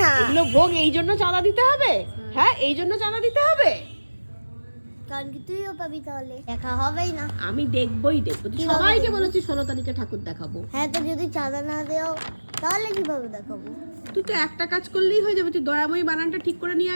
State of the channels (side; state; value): both; inverted; correlation -1.00